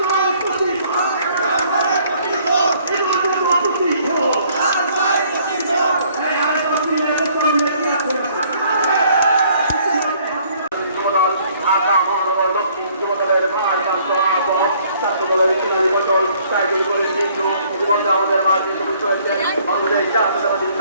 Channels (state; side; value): inverted; both; correlation -0.61